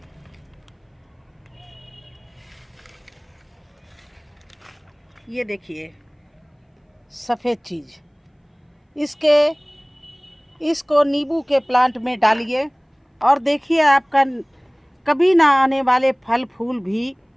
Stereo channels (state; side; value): identical; both; correlation 1.00